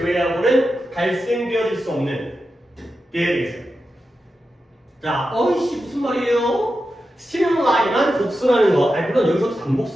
발생되어질 수 없는 게 되겠어요. 자, 어이씨 무슨 말이에요? 스티뮬라이만 복수라는 거. 아니 물론 여기서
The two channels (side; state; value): both; normal; correlation 0.90